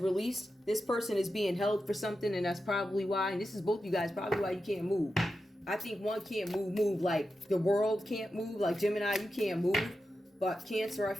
This person is being held for something, and that's probably why. And this is both you guys, probably why you can't move. I think one can't move like the world can't move. Like Gemini, you can't move. But Cancer, I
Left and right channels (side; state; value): both; normal; correlation 0.90